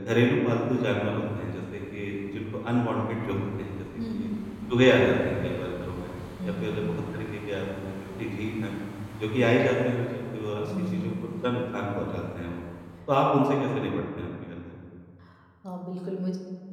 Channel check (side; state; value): both; identical; correlation 1.00